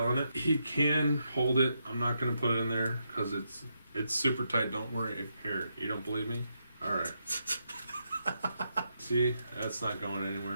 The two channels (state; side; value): inverted; both; correlation -0.81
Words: on it. He can hold it. I'm not going to put it in there because it's super tight. Don't worry. Here, you don't believe me? All right. See, that's not going